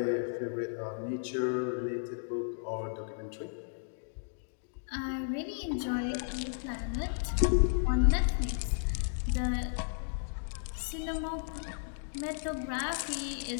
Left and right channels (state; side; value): silent; right; digital silence